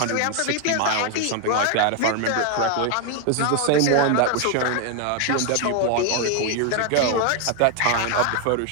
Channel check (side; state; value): both; different; correlation 0.01